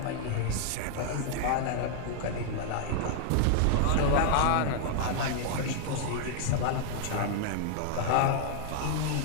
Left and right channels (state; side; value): different; both; correlation 0.00